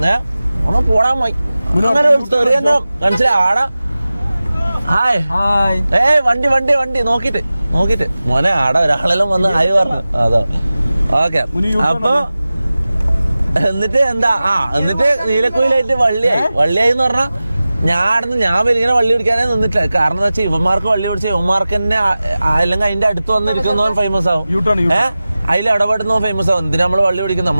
ഓണം പോടാൻ പോയി. അങ്ങനെ ഒരു സ്റ്റോറി തന്നെ മനസ്സിലായി. ആടാ ഹായ് വണ്ടി വണ്ടി വണ്ടി നോക്കിട്ട് മോനെ ആടെ ഒരാളെല്ലാം വന്ന് ഹായ് പറഞ്ഞു. അതാ ഓക്കെ. അപ്പൊ എന്നിട്ട് എന്താ എന്നിട്ട് നീലക്കുയിലായിട്ട് വള്ളിയായി എന്ന് പറഞ്ഞാ ഞാൻ വലിയ വള്ളി പിടിക്കാനേ നിന്നിട്ടില്ല. കാരണം എന്താ വെച്ചാൽ ഇവന്മാർക്ക് വള്ളി പിടിച്ച ഇവന്മാർക്ക് തന്നെ അല്ലെങ്കിൽ അതിന്റെ അടുത്ത് വന്നിരിക്കുന്നവൻ ഫേമസ് ആവും. അതിൽ ഇടപെടുന്നവൻ ഫേമസ് ആവും. എന്തിനാ നമ്മള് വള്ളി പിടിക്കുന്നത്?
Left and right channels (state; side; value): inverted; both; correlation -0.96